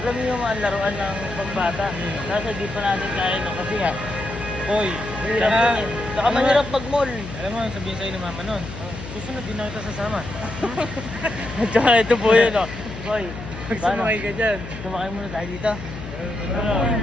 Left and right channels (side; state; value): left; noise; hum, 11 dB below the sound